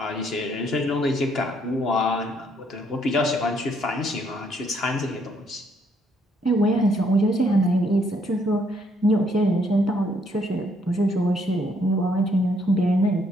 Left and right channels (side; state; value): both; normal; correlation 0.69